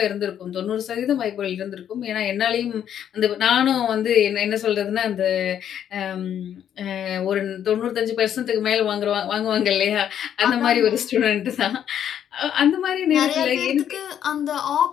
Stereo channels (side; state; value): right; quieter; 9.6 dB